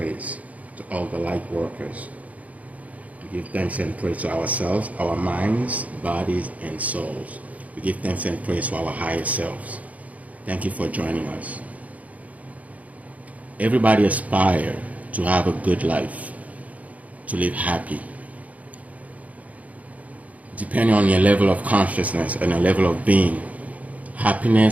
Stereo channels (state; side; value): late; left; 0.071 ms